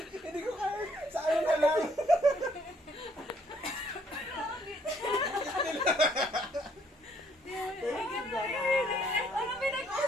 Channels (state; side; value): normal; both; correlation 0.66